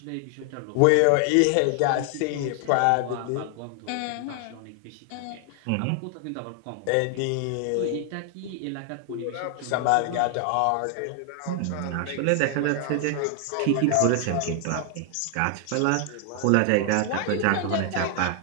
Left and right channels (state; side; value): different; both; correlation 0.00